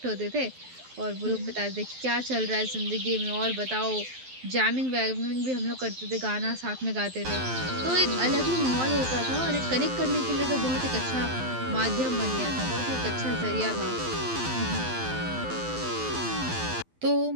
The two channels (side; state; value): left; late; 12 ms